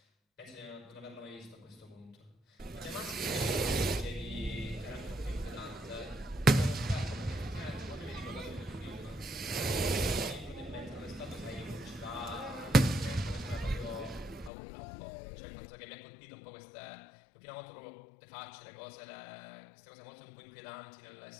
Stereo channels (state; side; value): drops out; right; at 14.5 s